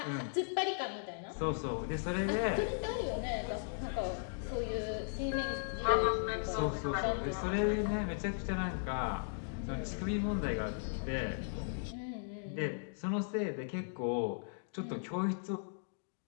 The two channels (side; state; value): right; silent; digital silence